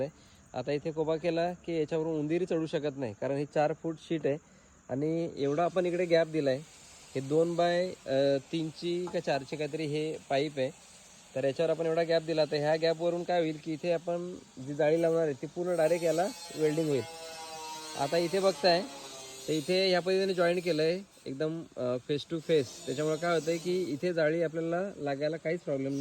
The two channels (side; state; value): both; identical; correlation 1.00